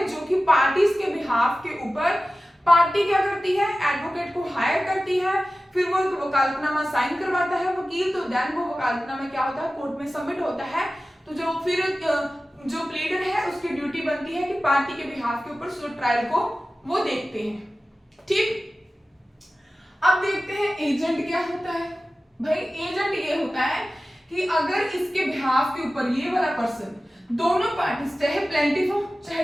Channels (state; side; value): normal; both; correlation 0.95